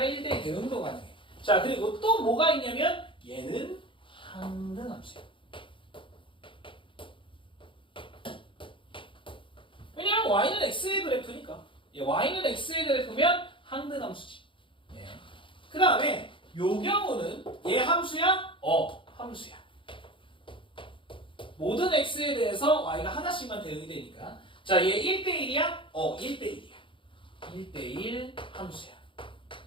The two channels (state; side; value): late; right; 0.25 ms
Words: 대응도 가능해. 자, 그리고 또 뭐가 있냐면 얘는 항등함수야. 왜냐면 y는 x의 그래프니까. y는 x의 그래프면 항등함수지. 예. 그 다음에 요 경우는 얘 함수야? 함수야. 모든 x에 대해서 y가 하나씩만 대응이 되니까. 자, 얘 1대1이야? 1대1이야. 1대1 함수야.